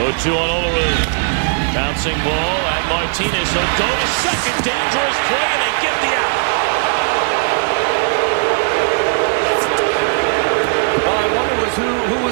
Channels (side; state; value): left; silent; digital silence